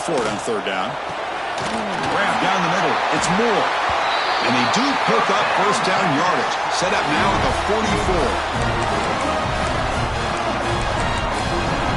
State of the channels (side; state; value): both; identical; correlation 1.00